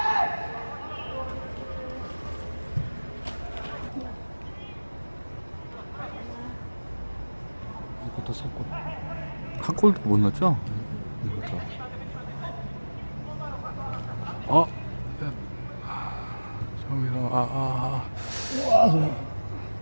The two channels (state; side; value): inverted; both; correlation -1.00